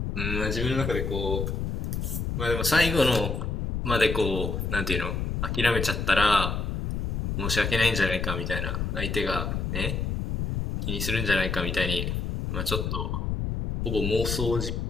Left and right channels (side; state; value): left; noise; rumble, 2 dB below the sound